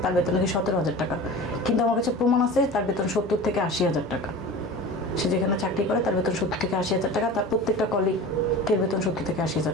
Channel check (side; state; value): both; normal; correlation 0.35